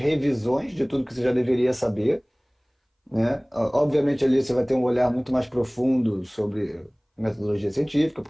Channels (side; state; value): both; identical; correlation 1.00